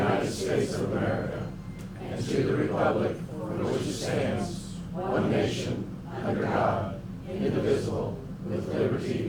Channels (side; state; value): both; identical; correlation 1.00